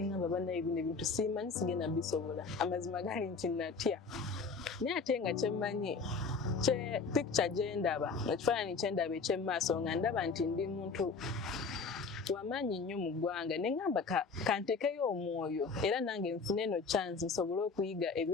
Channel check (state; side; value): quieter; right; 4.7 dB